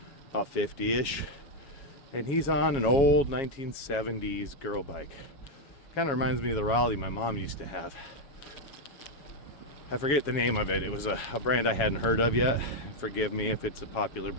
50-ish, and he's on an old 1970s girl bike. Kind of reminds me of the Raleigh my mom used to have. I forget the name of it. It was a brand I hadn't heard of yet. Forgive me if it's a popular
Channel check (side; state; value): right; late; 7.3 ms